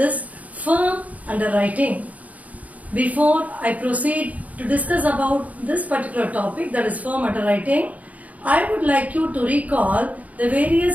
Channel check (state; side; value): late; left; 0.072 ms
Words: firm underwriting. Before I proceed to discuss about this particular topic, that is firm underwriting, I would like you to recall the